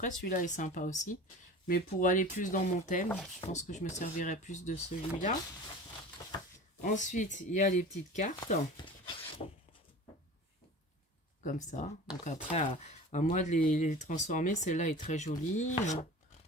celui-là est sympa aussi. Mais pour aller plus dans mon thème, je pense que je me servirai plus de celui-là. Ensuite, il y a les petites cartes. Comme ça. Donc après, à moi de les transformer. Celle-là est très jolie.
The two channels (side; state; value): both; normal; correlation 0.38